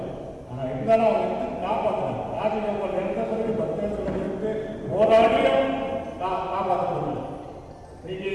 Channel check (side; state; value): both; identical; correlation 1.00